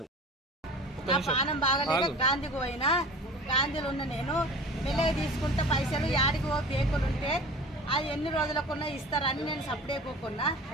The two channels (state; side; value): normal; both; correlation 0.39